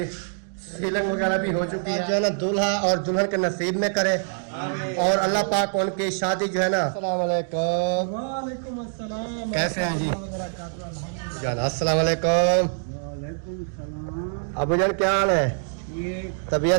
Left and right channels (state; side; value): silent; left; digital silence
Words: सीलिंग वगैरह भी हो चुकी है। जो है ना दूल्हा और दुल्हन के नसीब में करे और अल्लाह पाक उनकी शादी जो है ना। अस्सलाम वालेकुम। वालेकुम अस्सलाम। कैसे हैं जी जान? अस्सलाम वालेकुम। वालेकुम सलाम। अबू जान क्या हाल है? ये